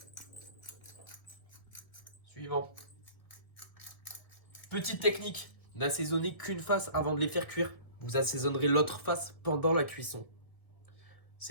Suivant. Petite technique, n'assaisonnez qu'une face avant de les faire cuire. Vous assaisonnerez l'autre face pendant la cuisson.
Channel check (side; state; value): right; late; 1.8 ms